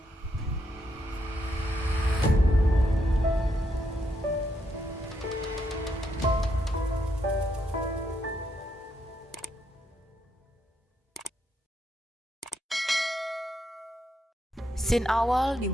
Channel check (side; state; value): both; normal; correlation 0.78